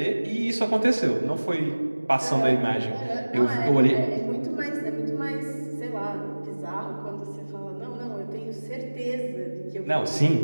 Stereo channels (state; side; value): inverted; both; correlation -1.00